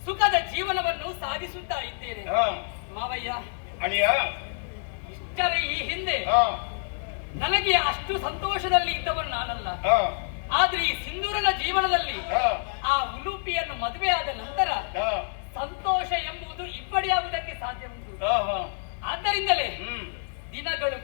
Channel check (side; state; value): right; silent; digital silence